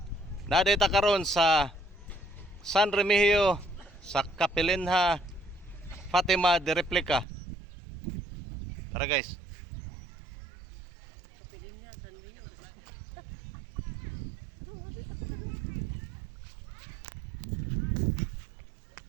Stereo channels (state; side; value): drops out; left; at 7.2 s